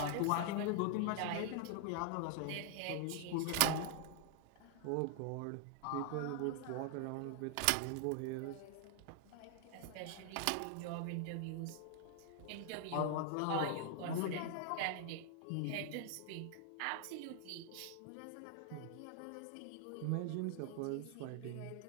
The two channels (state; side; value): different; both; correlation 0.00